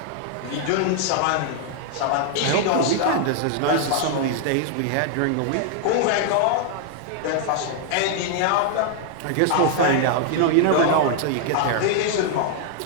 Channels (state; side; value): different; both; correlation 0.00